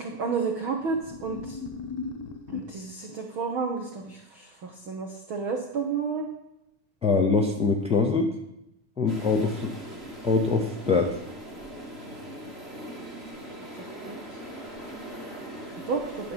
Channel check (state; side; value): late; left; 3.0 ms